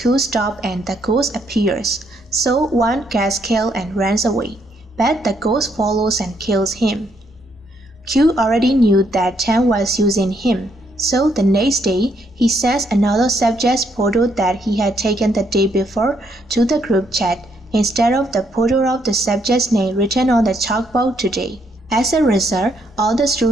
stop and the ghost appears, so Wan gets killed and runs away, but the ghost follows and kills him. Q already knew that Chan was using him, so the next day he sends another subject's photo that he had taken the day before to the group chat instead of the photo of the subject's name written on the chalkboard today. As a result, all the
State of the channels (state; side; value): normal; both; correlation 0.73